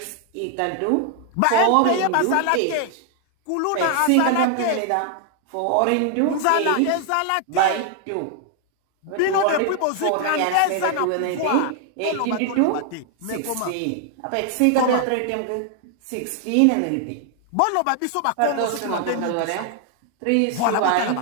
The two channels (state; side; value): different; both; correlation 0.00